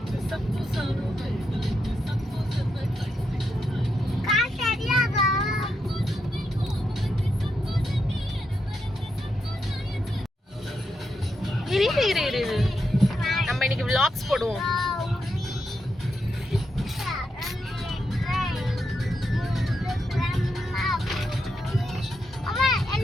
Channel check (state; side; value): normal; both; correlation 0.83